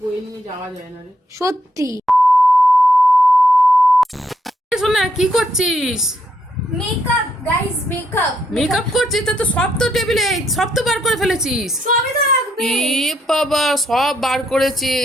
বয়ে নিয়ে যাওয়া যায় না রে। সত্যি। শোনা, কি করছিস? Makeup guys, makeup. মেকআপ করছিস? তা তো সব তো টেবিলে, সব তো বার করে ফেলেছিস। সবই তো লাগবে। এ বাবা, সব বার করেছে,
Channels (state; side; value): normal; both; correlation 0.76